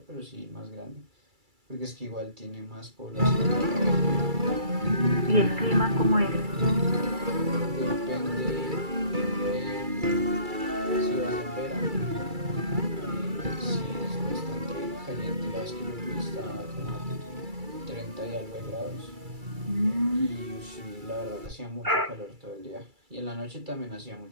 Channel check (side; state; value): left; late; 2.3 ms